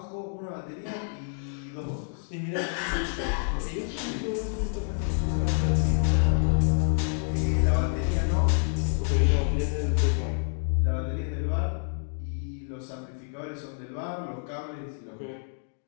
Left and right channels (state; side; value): silent; right; digital silence